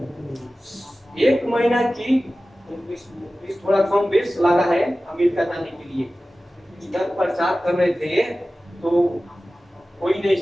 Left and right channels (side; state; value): both; normal; correlation 0.96